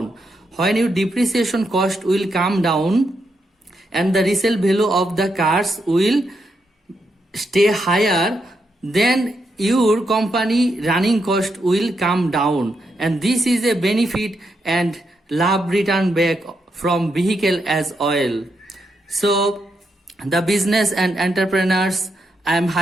when your depreciation cost will come down and the resale value of the cars will stay higher, then your company running cost will come down, and this is a benefit and love return back from vehicle as oil. So the business and entrepreneurs, I am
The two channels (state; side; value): normal; both; correlation 0.81